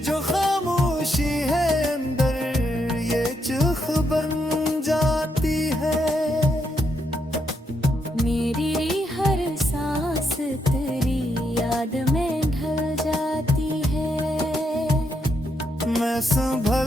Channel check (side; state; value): both; normal; correlation 0.79